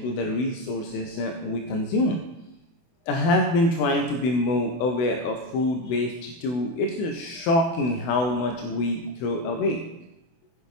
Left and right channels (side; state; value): right; late; 24 ms